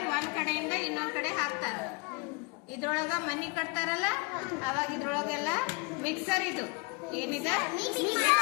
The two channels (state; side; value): quieter; right; 29.2 dB